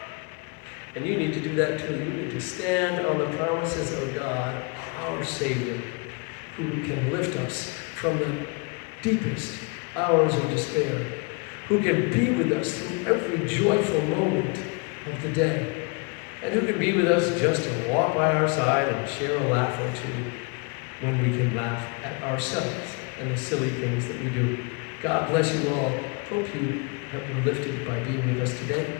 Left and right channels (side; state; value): right; quieter; 31.9 dB